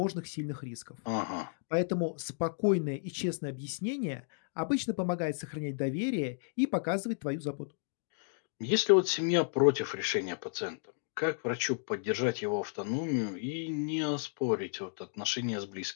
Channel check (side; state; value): right; silent; digital silence